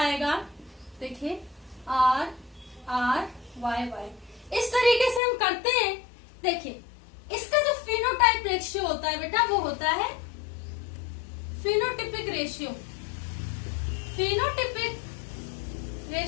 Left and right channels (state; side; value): drops out; right; at 5.2 s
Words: देखिए आर आर वाई वाई। इस तरीके से हम करते हैं। देखिए इसका जो फिनोटाइप रेशियो होता है बेटा, वो होता है फिनोटिपिक रेशियो। फिनोटिपिक